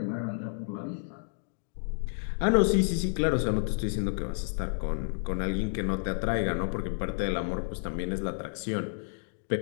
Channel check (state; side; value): silent; right; digital silence